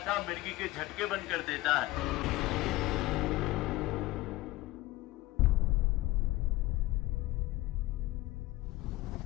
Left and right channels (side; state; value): right; quieter; 18.4 dB